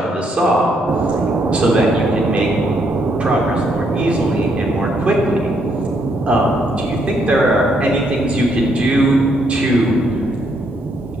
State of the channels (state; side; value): normal; both; correlation 0.73